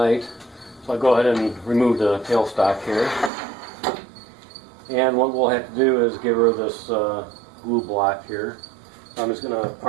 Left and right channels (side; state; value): left; drops out; at 3.3 s